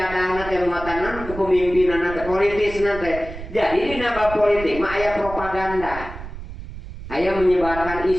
teh muatan kepemimpinanna teh politisna teh. Jadi dina bab politik mah aya propaganda. Aya menyebarkan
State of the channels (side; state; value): right; noise; rumble, 11 dB below the sound